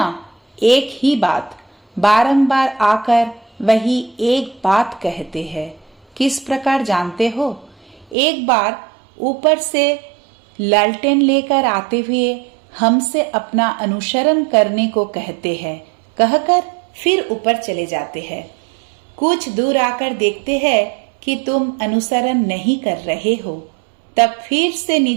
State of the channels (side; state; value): left; drops out; at 8.2 s